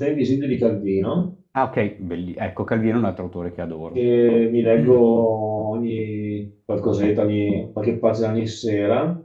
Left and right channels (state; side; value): identical; both; correlation 1.00